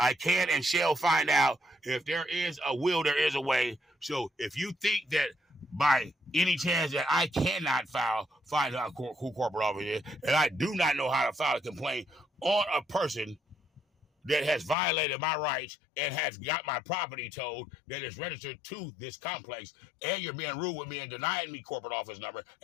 can and shall find out if there is a will, there is a way. So if you think that by any chance that I cannot find out who corporate officer is, and I do not know how to file a complaint on a person that has violated my rights and has got my property towed that is registered to this complex, and you're being rude with me and denying me corporate office number,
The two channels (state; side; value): drops out; right; at 14.8 s